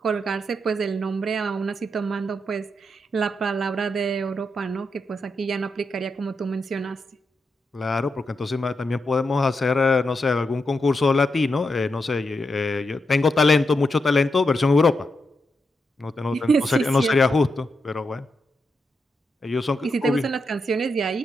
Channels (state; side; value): normal; both; correlation 0.85